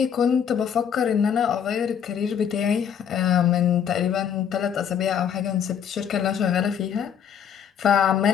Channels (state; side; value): quieter; right; 8.2 dB